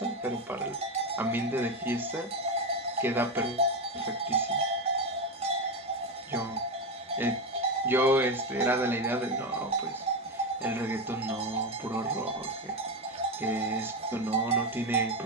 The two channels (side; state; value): both; normal; correlation 0.13